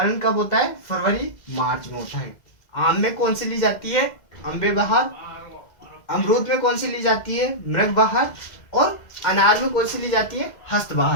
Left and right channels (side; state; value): right; late; 2.0 ms